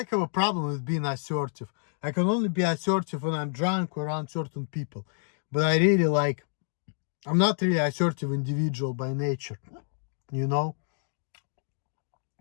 have a problem with being assertive. I can only be assertive when I'm drunk or around certain people. But I really like, I'm not really assertive individual by nature, you know?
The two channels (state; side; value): silent; right; digital silence